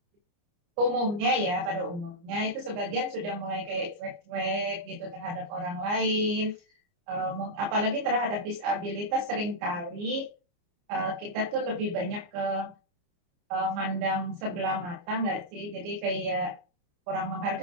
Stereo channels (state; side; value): late; left; 29 ms